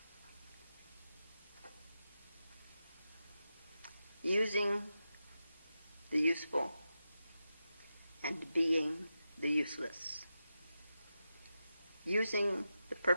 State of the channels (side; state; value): both; inverted; correlation -0.90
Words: using the useful and being the useless, using the